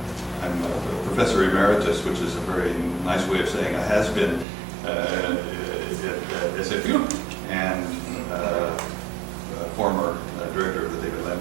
I'm a professor emeritus, which is a very nice way of saying I has been at SFU, and former director of the David Lamb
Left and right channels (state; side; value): drops out; left; at 4.5 s